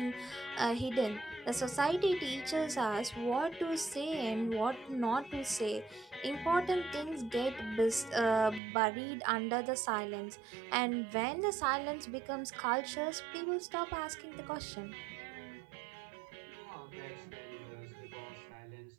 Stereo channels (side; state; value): left; drops out; at 8.6 s